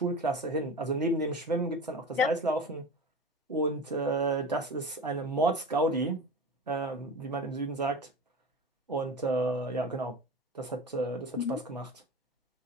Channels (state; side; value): normal; both; correlation 0.31